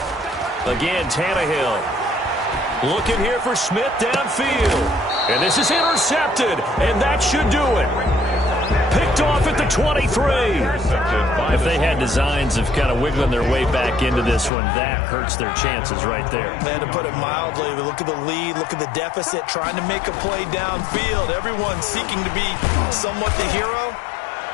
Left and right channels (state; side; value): drops out; right; at 14.5 s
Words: 21. Again, Tannehill. Looking here for Smith downfield. And this is intercepted, and that should do it. Picked picked off at the 23. If they had designs of kind of wiggling their way back into this one, that hurts their chances right there. And to put it mildly, look at the lead, look at the deficit, trying to make a play downfield. Everyone seeking to be somewhat the hero.